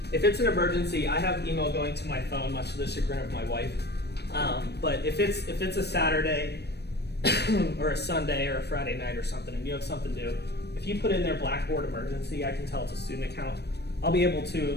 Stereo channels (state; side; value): late; right; 0.48 ms